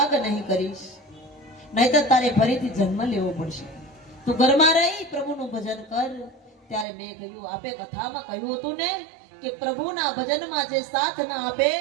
નહીં કરીશ, નહીતર તારે ફરીથી જન્મ લેવો પડશે। તું ઘરમાં રહી પ્રભુનું ભજન કર। ત્યારે મેં કહ્યું, આપે કથામાં કહ્યું હતું ને કે પ્રભુના ભજનમાં જે સાથ ન આપે,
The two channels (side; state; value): left; drops out; at 6.9 s